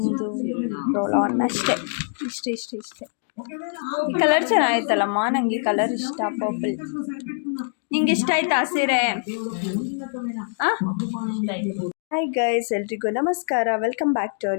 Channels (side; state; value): right; silent; 63 dB below the other